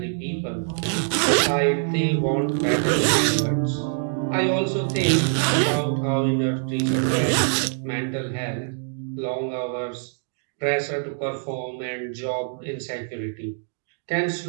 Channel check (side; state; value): left; silent; digital silence